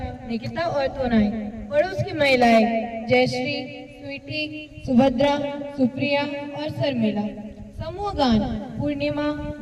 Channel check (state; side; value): identical; both; correlation 1.00